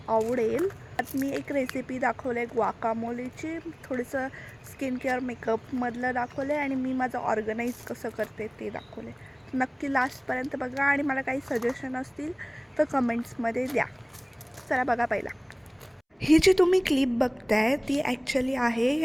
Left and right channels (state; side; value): identical; both; correlation 1.00